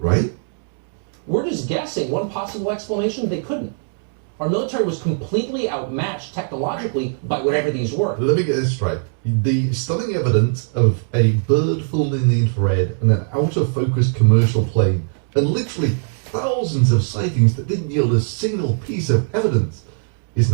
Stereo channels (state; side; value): silent; left; digital silence